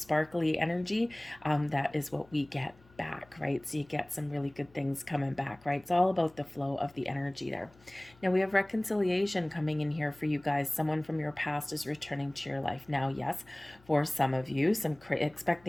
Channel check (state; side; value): noise; left; hum, 28 dB below the sound